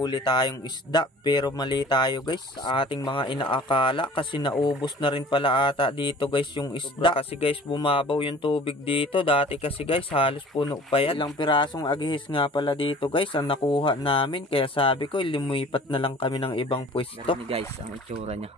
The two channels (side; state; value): both; normal; correlation 0.46